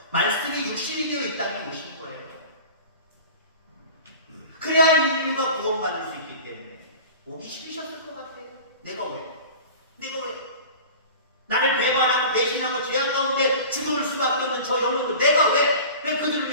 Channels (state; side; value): inverted; both; correlation -0.38